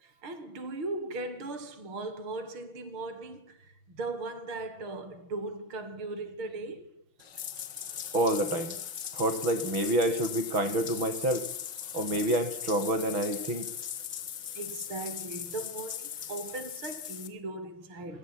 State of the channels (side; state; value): left; late; 6.0 ms